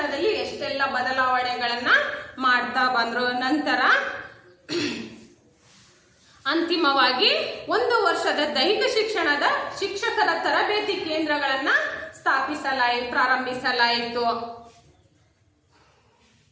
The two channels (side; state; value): both; identical; correlation 1.00